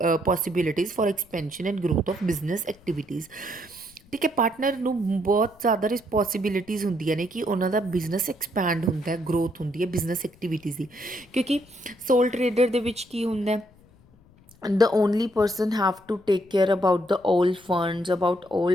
possibilities for expansion and growth of business activities। ਠੀਕ ਹੈ। Partner ਨੂੰ ਬਹੁਤ ਜ਼ਿਆਦਾ responsibilities ਹੁੰਦੀਆਂ ਨੇ ਕਿ ਉਹਨਾਂ ਦਾ business expand ਹੁੰਦਾ ਹੈ, ਗਰੋਥ ਹੁੰਦੀ ਹੈ ਬਿਜ਼ਨਸ ਐਕਟੀਵਿਟੀਜ਼ ਦੀ। ਕਿਉਂਕਿ ਸੋਲ ਟਰੇਡਰ ਦੇ ਵਿੱਚ ਕੀ ਹੁੰਦਾ, the only person have to take care about the all funds, about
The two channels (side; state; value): left; noise; rumble, 28 dB below the sound